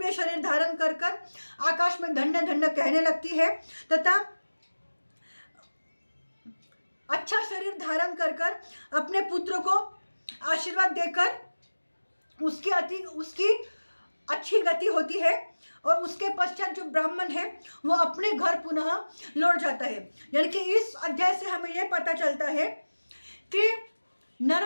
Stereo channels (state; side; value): inverted; both; correlation -1.00